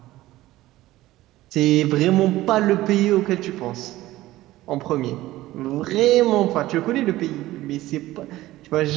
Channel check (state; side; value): quieter; left; 16.5 dB